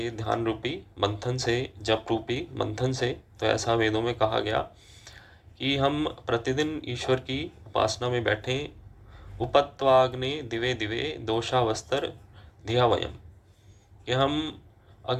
ध्यान रूपी मंथन से, जप रूपी मंथन से। तो ऐसा वेदों में कहा गया कि हम प्रतिदिन ईश्वर की उपासना में बैठें। उपत्वाग्ने दिवे दिवे दोषावस्तर धिया वयम, कि हम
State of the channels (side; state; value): both; identical; correlation 1.00